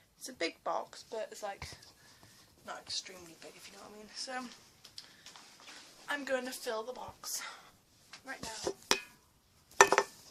a big box, but it's like not extremely big, if you know what I mean. So I'm going to fill the box right now.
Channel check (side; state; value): both; identical; correlation 1.00